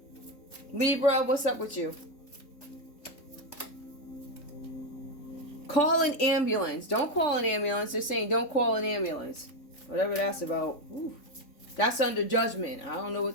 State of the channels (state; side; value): late; right; 3.6 ms